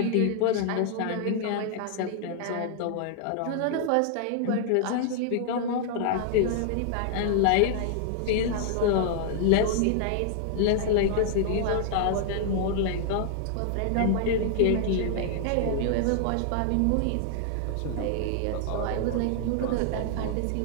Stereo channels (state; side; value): different; both; correlation -0.01